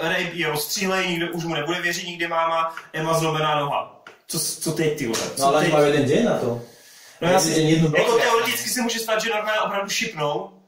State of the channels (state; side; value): identical; both; correlation 1.00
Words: je rozstřílej, nikdo už mu nebude věřit, nikdy máma, Emma zlomená noha. Co teď, ty vole? No ale majú jeden deň na to. No jasně, jako teoreticky se může stát, že Norman opravdu šipnou